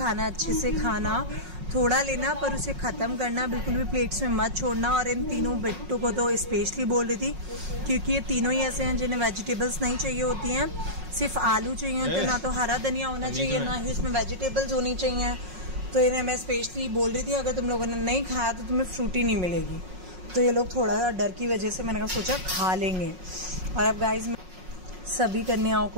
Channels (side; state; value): left; late; 5.5 ms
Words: अच्छे से खाना, थोड़ा लेना पर उसे ख़त्म करना, बिल्कुल भी प्लेट्स में मत छोड़ना। और इन तीनों बच्चों को तो स्पेशली बोल रही थी क्योंकि ये तीनों ही ऐसे हैं जिन्हें वेजिटेबल्स नहीं चाहिए होती हैं, सिर्फ आलू चाहिए होते हैं, ना तो हरा धनिया होना चाहिए, ना ही उसमें वेजिटेबल्स होनी चाहिए। तो इन्हें मैं स्पेशली बोल रही थी अगर तुम लोगों ने नहीं खाया तो तुम्हें फ्रूटी नहीं मिलेगी। तो ये लोग थोड़ा सा डर की वजह से मैंने सोचा खा लेंगे। और अब गाइज, सभी कन्याओं